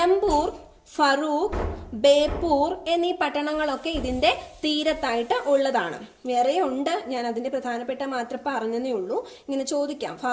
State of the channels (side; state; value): both; identical; correlation 1.00